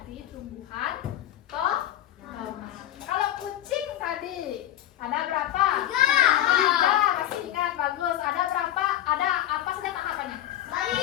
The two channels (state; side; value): quieter; right; 12.9 dB